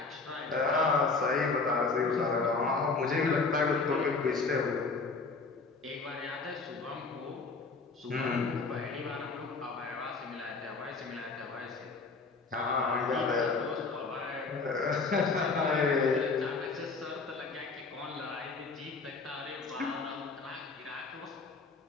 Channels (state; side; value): quieter; right; 4.1 dB